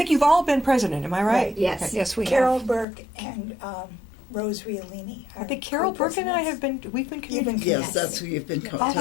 you've all been president. Am I right? Right. Yes. Okay. Yes, we Carol have. Burke and Rose Riolini. I think Carol Burke and I have been. We've been You've been communicating. Yes, that's who you've been Oh, that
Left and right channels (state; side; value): drops out; right; at 2.9 s